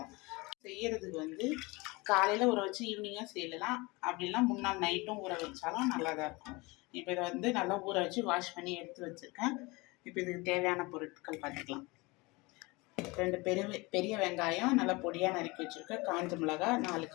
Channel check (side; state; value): right; quieter; 24.6 dB